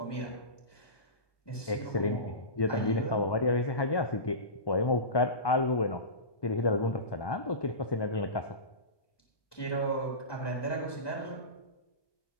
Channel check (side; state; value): right; late; 1.2 ms